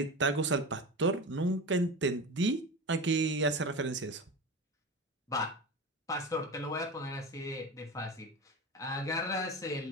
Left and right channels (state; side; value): normal; both; correlation 0.27